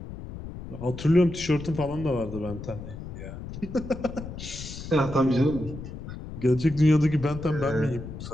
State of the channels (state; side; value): noise; left; rumble, 10 dB below the sound